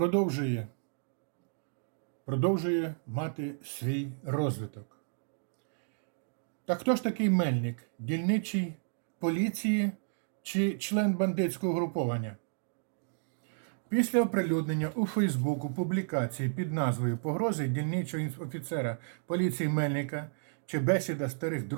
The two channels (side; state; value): left; silent; digital silence